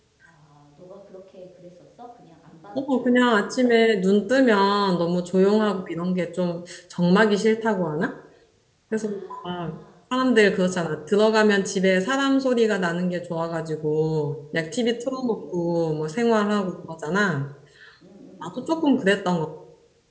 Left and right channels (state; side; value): identical; both; correlation 1.00